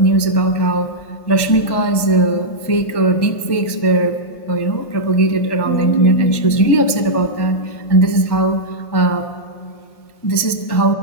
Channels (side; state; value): right; late; 1.2 ms